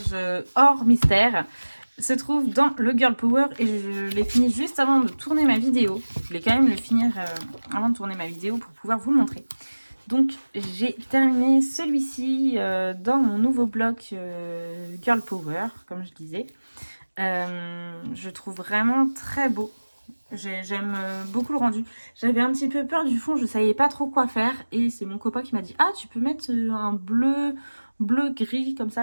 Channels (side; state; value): both; inverted; correlation -1.00